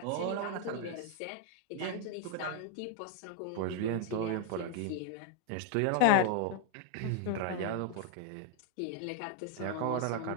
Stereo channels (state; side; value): different; both; correlation 0.00